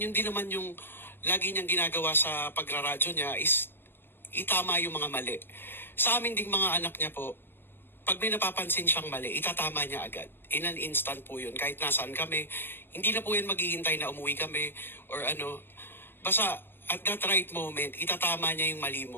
din naman yung lagi niyang ginagawa sa pagraradyo niya is itama yung mga mali. Sa amin ding mga anak niya po, pag may napapansin siyang mali, itatama niya agad. In an instant po yun. Kahit nasaan kami, hindi na po yan maghihintay na umuwi kami or ano. Basta at that right moment, itatama niya yung mali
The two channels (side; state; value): right; late; 0.099 ms